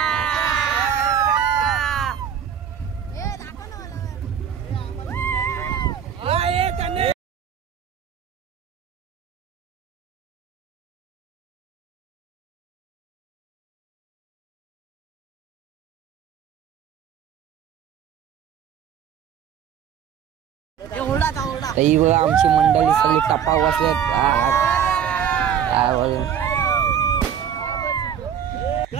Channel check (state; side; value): quieter; left; 8.6 dB